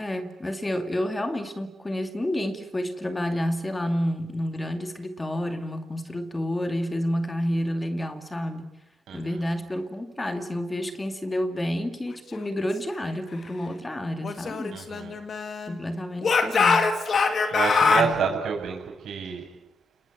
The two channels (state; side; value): normal; both; correlation 0.87